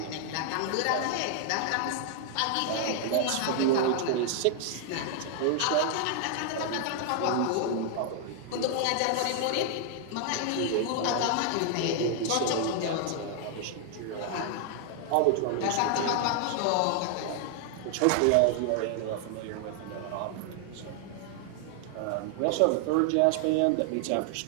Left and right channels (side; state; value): both; different; correlation 0.00